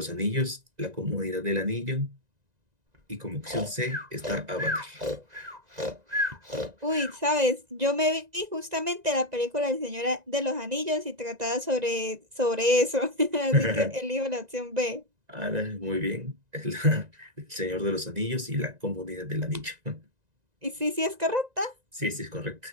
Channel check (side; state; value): left; late; 1.9 ms